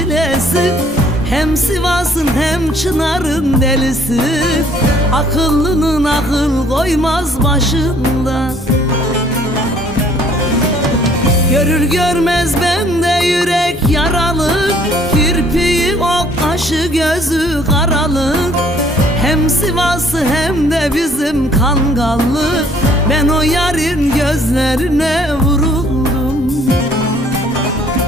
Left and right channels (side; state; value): both; normal; correlation 0.59